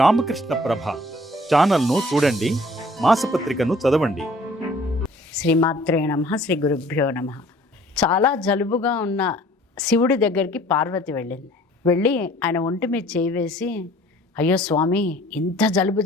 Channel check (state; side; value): normal; both; correlation 0.54